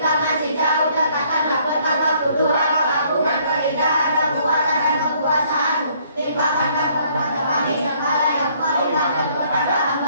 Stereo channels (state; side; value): inverted; both; correlation -0.63